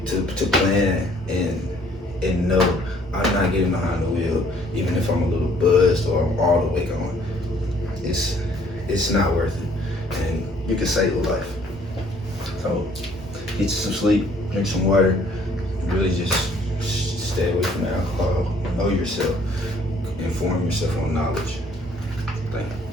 to plan and know I'm not getting behind the wheel, even if I'm a little buzzed or I'm all the way gone. It's not worth it, and you can save a life. So get you some sleep, drink some water, really just stay away from alcohol. Know yourself, inform yourself on knowledge. Thank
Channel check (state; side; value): normal; both; correlation 0.60